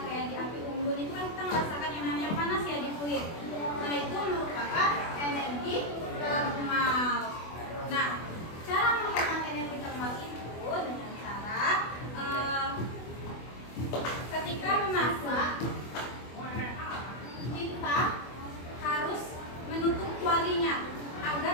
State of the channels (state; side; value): late; right; 24 ms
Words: kayak di api unggun itu kan kita merasakan yang namanya panas ya di kulit. Nah, itu merupakan energi termal. Nah, cara menghemat energi termal itu dengan cara ketika memasak kita harus menutup kualinya